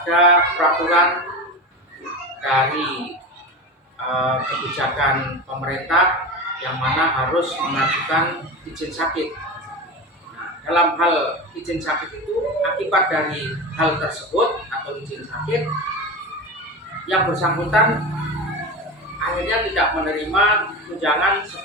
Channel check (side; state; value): both; normal; correlation 0.25